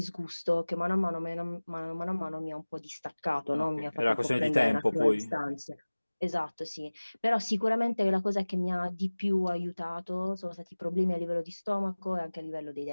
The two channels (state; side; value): inverted; both; correlation -1.00